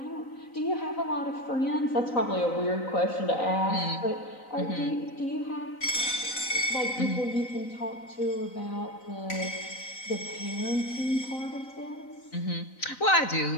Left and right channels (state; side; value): late; right; 3.9 ms